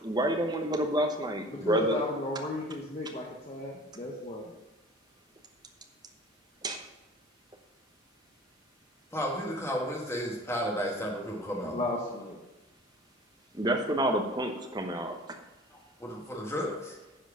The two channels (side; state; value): both; normal; correlation 0.45